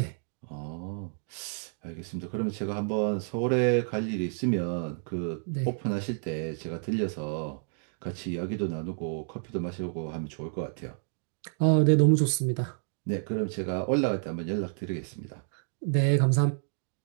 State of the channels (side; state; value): left; silent; digital silence